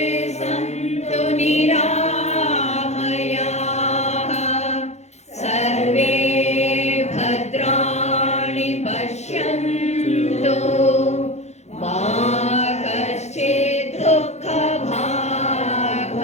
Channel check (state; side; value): late; right; 0.32 ms